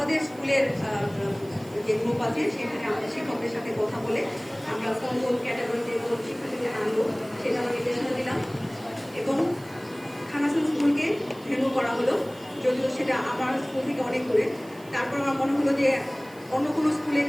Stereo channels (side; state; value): right; noise; hiss, 24 dB below the sound